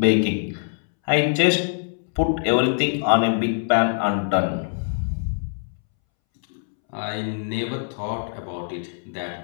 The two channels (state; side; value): silent; right; 63 dB below the other